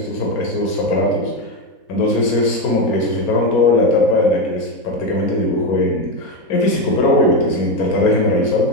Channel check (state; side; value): late; right; 4.3 ms